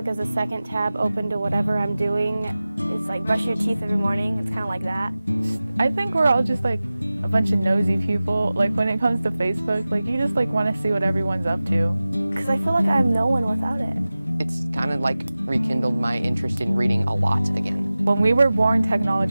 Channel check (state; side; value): inverted; both; correlation -0.96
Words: as a second tab open to whatever I'm doing. It's like brush your teeth every morning. It's kind of like that. I think we're all just like a bunch of nosy people. Like when it comes to Facebook, like you just like want to see what everyone's up to. Because I feel like I'm no one without it. It's kind of like rekindled my interest in reading a lot again. When we were born,